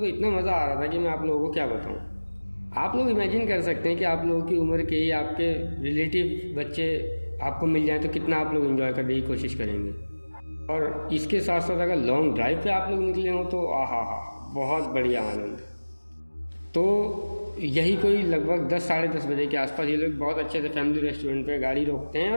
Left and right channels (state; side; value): inverted; both; correlation -1.00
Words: इतना मज़ा आ रहा था कि मैं आप लोगों को क्या बताऊँ। आप लोग इमेजिन कर सकते हैं कि आप लोगों की उम्र के ही आपके रिलेटिव बच्चे आपको मिल जाए तो कितना आप लोग एंजॉय करने की कोशिश करेंगे। और इसके साथ साथ अगर लॉन्ग ड्राइव पे आप लोग निकले हों तो आहा हा, बहुत बढ़िया आनंद। तो यही कोई लगभग 10 साढ़े 10 बजे के आसपास ये लोग बहुत अच्छे से फैमिली रेस्टोरेंट पे गाड़ी रोकते हैं